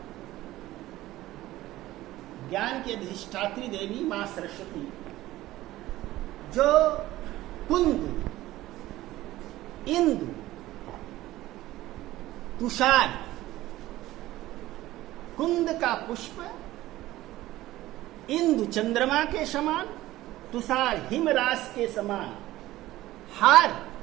ज्ञान की अधिष्ठात्री देवी मां सरस्वती जो कुंद, इंदु, तुषार, कुंद का पुष्प, इंदु चंद्रमा के समान, तुषार हिमरास के समान, हार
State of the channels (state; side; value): quieter; left; 16.2 dB